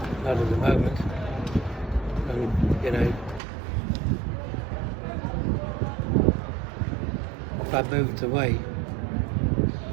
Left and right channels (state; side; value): drops out; left; at 3.4 s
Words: Not at the moment. And, if I moved away,